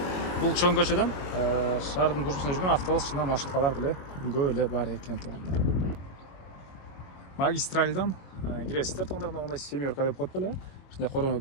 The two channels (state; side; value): late; right; 22 ms